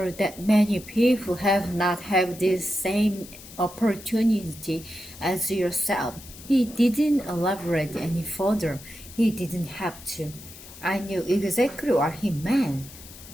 that many people have not had this same opportunity as yourself. He didn't elaborate any further. He didn't have to. I knew exactly what he meant.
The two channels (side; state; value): left; noise; hiss, 17 dB below the sound